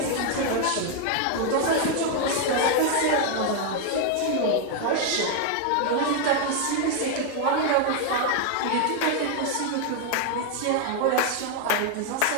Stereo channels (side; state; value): both; different; correlation 0.00